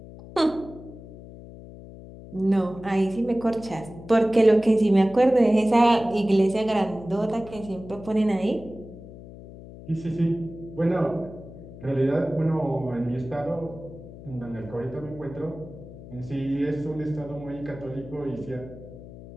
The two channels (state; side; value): noise; left; hum, 16 dB below the sound